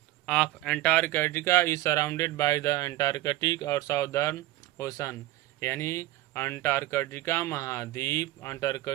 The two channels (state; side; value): quieter; left; 16.8 dB